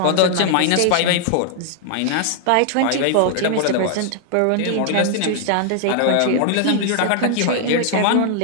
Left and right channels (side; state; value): both; different; correlation -0.01